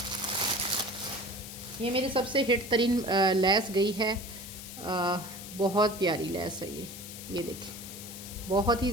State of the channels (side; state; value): left; noise; hiss, 12 dB below the sound